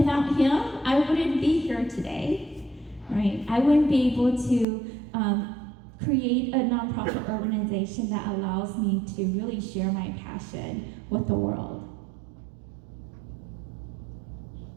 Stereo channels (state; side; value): drops out; left; at 4.7 s